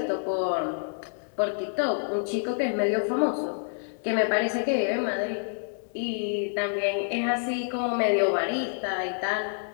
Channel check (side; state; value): right; silent; 59 dB below the other